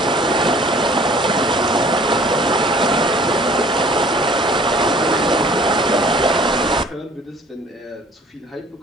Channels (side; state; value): both; normal; correlation 0.53